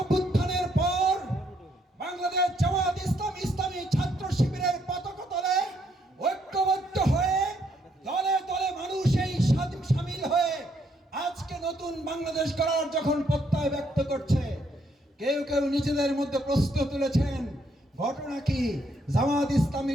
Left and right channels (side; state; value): both; normal; correlation 0.72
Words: পর বাংলাদেশ জামাত ইসলামী ছাত্র শিবিরের পতাকা তলে ঐক্যবদ্ধ হয়ে দলে দলে মানুষ এই সামিল হয়ে আজকে নতুন বাংলাদেশ গড়ার যখন প্রত্যয় ব্যক্ত করছে, কেউ কেউ নিজেদের মধ্যে প্রশ্ন তুলেছেন, ঘটনা কি, জামাত